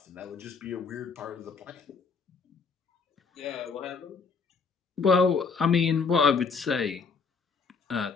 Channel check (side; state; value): right; quieter; 5.1 dB